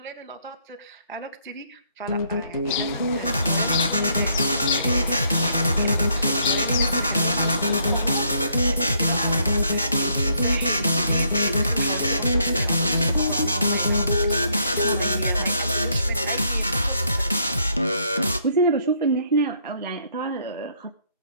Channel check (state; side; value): inverted; both; correlation -0.70